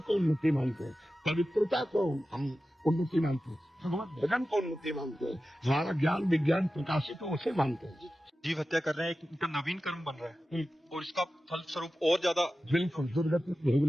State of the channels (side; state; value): both; normal; correlation 0.94